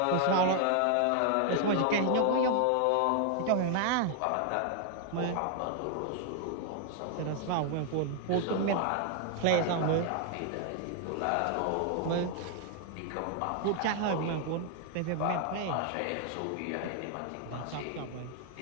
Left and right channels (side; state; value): both; different; correlation 0.00